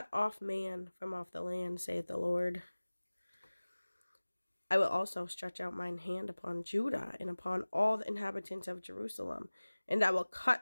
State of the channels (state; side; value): inverted; both; correlation -1.00